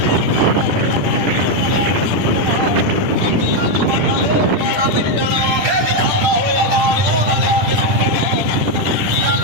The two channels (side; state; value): left; late; 10 ms